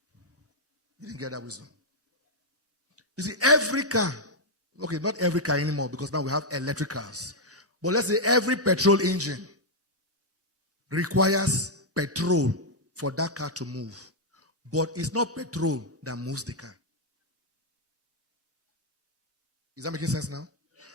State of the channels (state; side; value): normal; both; correlation -0.02